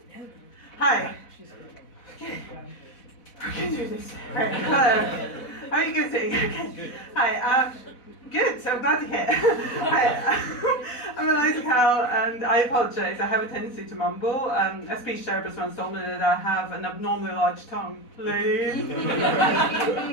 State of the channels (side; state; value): right; late; 4.0 ms